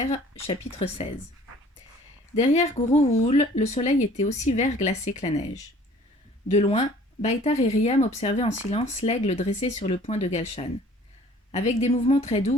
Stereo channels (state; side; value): normal; both; correlation 0.52